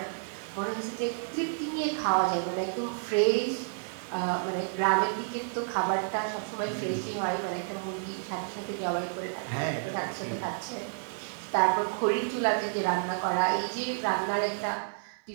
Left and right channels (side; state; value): left; silent; 55 dB below the other